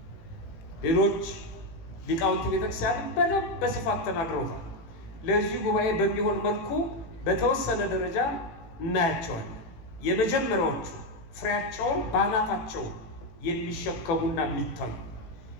ሌሎች ሊቃውንት ቤተክርስቲያን በደንብ በስፋት ተናግረውታል። ለዚህ ጉባኤ በሚሆን መልኩ በተወሰነ ደረጃ እናያቸዋለን። የመጀመሪያዎቹ ፍሬያቸውን ባናታቸው የሚሸከሙና የሚታዩ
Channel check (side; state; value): right; late; 18 ms